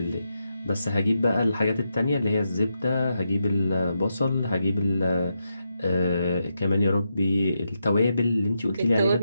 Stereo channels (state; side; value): inverted; both; correlation -0.85